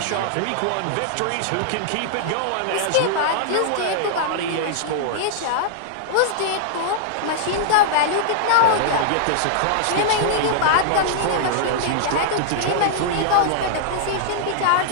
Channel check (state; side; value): different; both; correlation -0.01